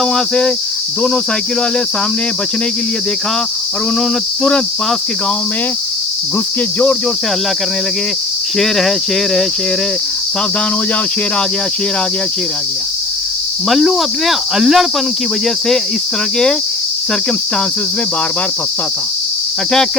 वहाँ से। दोनों साइकिल वाले सामने बचने के लिए देखा और उन्होंने तुरंत पास के गांव में घुस के जोर जोर से हल्ला करने लगे, शेर है, शेर है, शेर है, सावधान हो जाओ, शेर आ गया, शेर आ गया, शेर आ गया। मल्लू अपने अल्लड़पन की वजह से इस तरह के सर्कमस्टांसेस में बार बार फंसता था, अटैक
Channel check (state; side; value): quieter; right; 3.1 dB